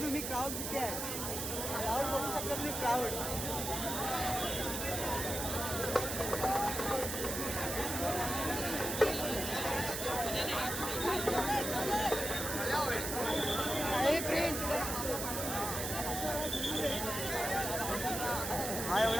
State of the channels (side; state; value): right; noise; hiss, 3 dB below the sound